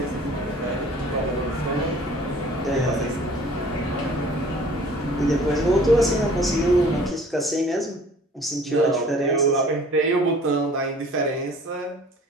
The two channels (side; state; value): both; normal; correlation 0.50